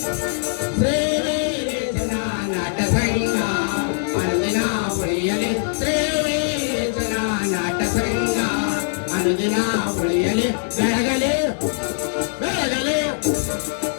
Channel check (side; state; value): right; silent; digital silence